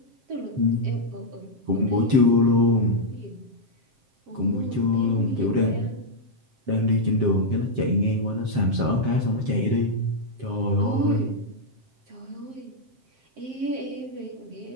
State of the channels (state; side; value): late; left; 7.6 ms